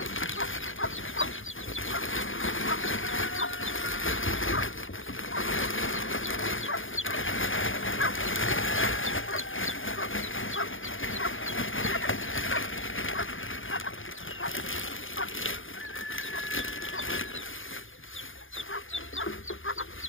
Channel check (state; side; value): late; right; 0.58 ms